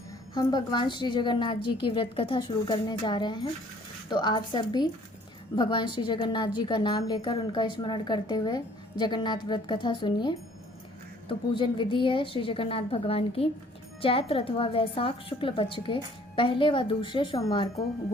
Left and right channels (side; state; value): both; normal; correlation 0.57